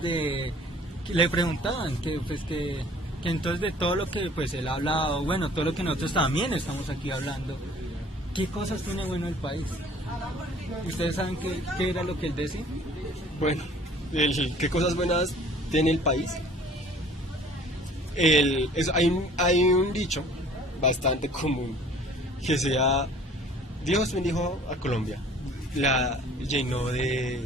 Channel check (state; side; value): normal; both; correlation 0.51